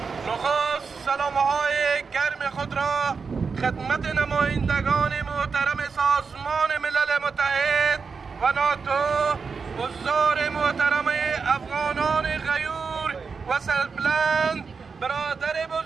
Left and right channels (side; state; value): left; quieter; 5.2 dB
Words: نخست سلام‌های گرم خود را خدمت نمایندگان محترم سازمان ملل متحد و ناتو حضار محترم افغانان غیور و سربلند برادر